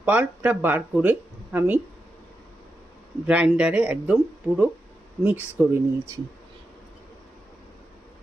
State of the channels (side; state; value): both; normal; correlation 0.88